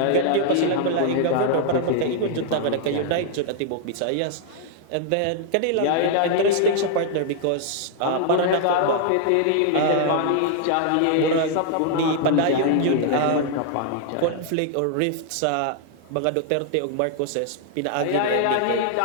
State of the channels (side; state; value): both; different; correlation -0.01